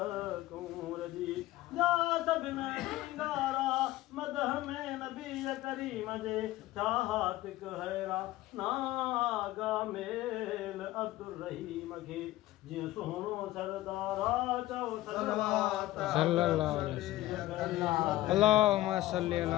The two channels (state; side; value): quieter; right; 16.2 dB